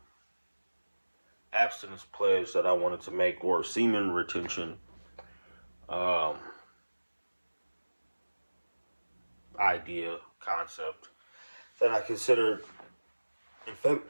abstinence pledge that I wanted to make, or semen retention um, idea, concept that I considered in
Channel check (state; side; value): inverted; both; correlation -1.00